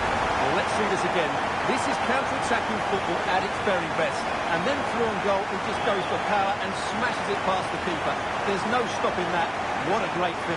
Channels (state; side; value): identical; both; correlation 1.00